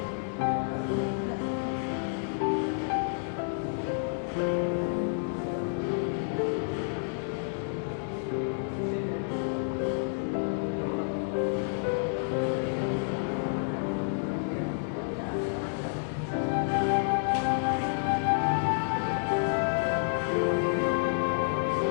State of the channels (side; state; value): right; silent; digital silence